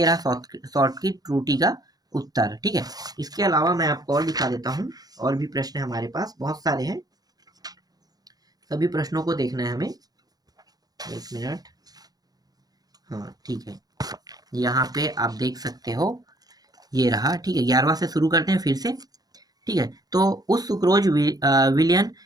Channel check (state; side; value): late; left; 0.19 ms